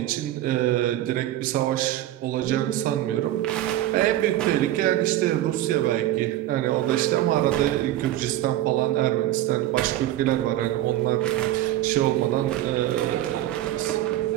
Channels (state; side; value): quieter; left; 13.8 dB